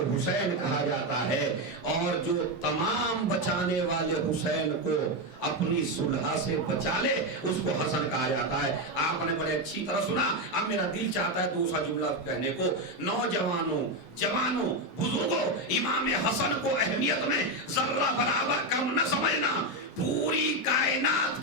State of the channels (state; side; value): normal; both; correlation 0.09